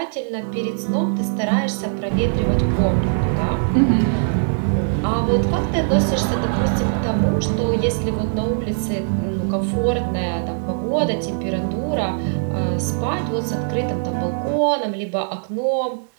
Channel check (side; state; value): left; silent; digital silence